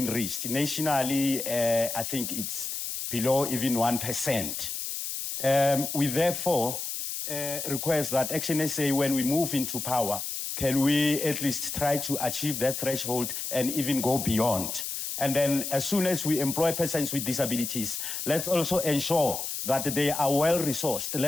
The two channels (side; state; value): left; noise; hiss, 4 dB below the sound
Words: reached. Nationally, I think it's below even 1%. We therefore request that ActionSA, when we move into power, can we at least try to achieve that threshold and even go beyond? And then as soon as we employ persons with disabilities, let's also ensure that they are well resourced.